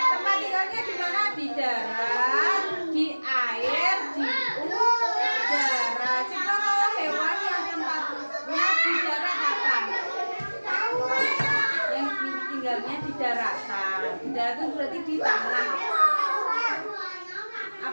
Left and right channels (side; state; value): both; inverted; correlation -1.00